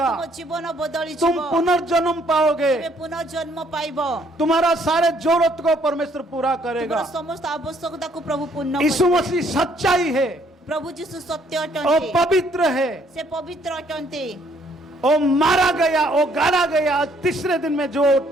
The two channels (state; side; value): normal; both; correlation 0.66